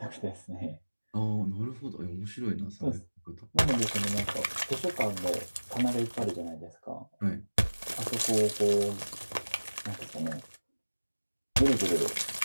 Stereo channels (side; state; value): both; inverted; correlation -1.00